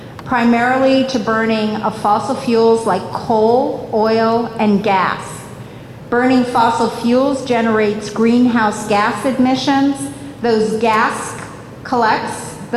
primarily to burning of fossil fuels like coal, oil, and gas. Burning fossil fuels generates greenhouse gas emissions. Those gases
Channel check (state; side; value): identical; both; correlation 1.00